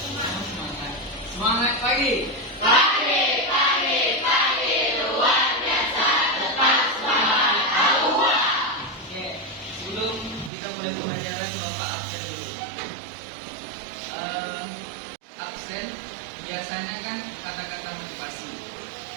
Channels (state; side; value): drops out; left; at 10.5 s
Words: Semangat pagi. Pagi luar biasa. Tetap semangat. Allah. Oke, sebelum kita mulai pembelajaran, Bapak absen dulu. Absen biasanya kan kata-kata motivasi